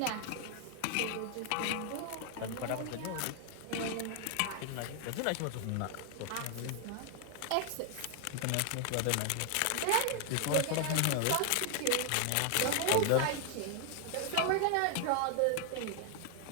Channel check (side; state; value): both; different; correlation 0.00